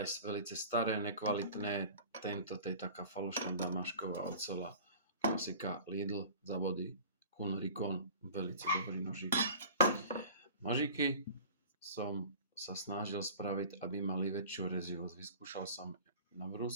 velice staré, nekvalitné. Tento, to je taká falošná damašková oceľa. Klasika Lidl za body. Kuhn Rikon, velice dobrý nožík. Nožíky som sa snažil spraviť, aby mali väčšiu rezivosť. Vyskúšal som na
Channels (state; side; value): inverted; both; correlation -0.41